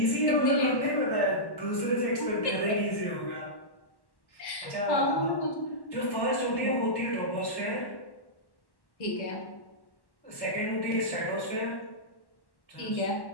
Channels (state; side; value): late; right; 1.1 ms